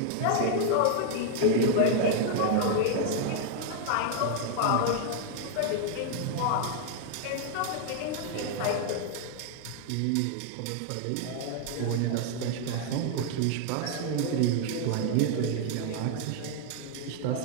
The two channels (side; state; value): both; different; correlation 0.00